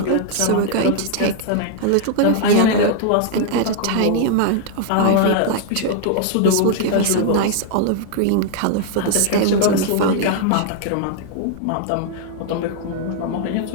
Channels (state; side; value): different; both; correlation 0.00